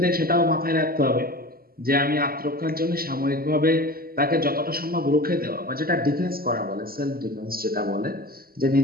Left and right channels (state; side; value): late; left; 0.43 ms